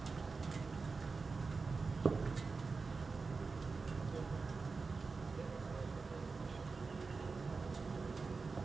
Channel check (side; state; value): left; quieter; 4.4 dB